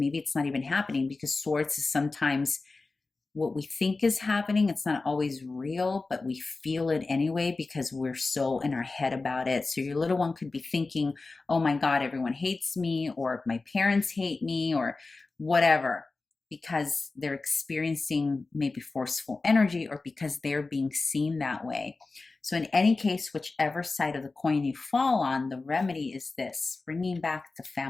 it's not even happening, because swords is sometimes what we think is happening. It's not always real, but we feel it anyway because we're so in our head about it. So your little one could be thinking, oh my God, everyone hates me, or my parents hate me, or whatever, because they're experiencing maybe forceful energy, or because they're being seen that way. So in any case, whichever side of the coin you fall on, the remedy is this: bringing back the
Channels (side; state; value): right; quieter; 3.7 dB